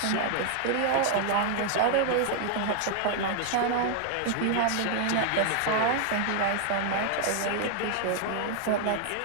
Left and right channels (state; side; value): different; both; correlation 0.00